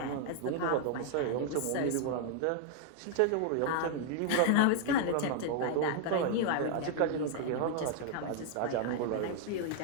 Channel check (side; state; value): both; different; correlation 0.00